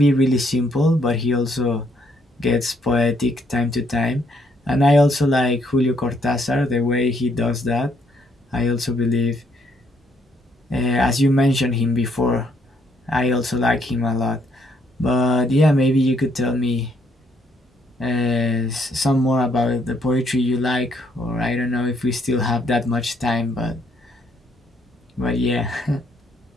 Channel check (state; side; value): normal; both; correlation 0.71